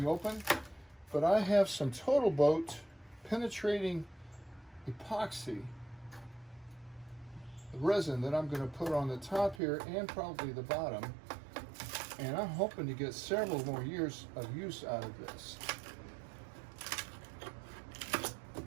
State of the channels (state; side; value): drops out; left; at 9.6 s